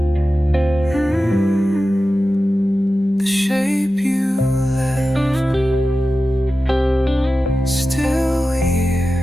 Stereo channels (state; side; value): normal; both; correlation 0.93